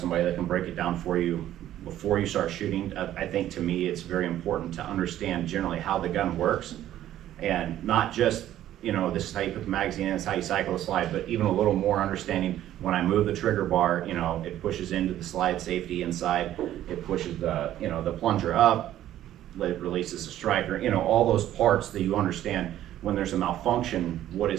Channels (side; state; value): left; quieter; 12.6 dB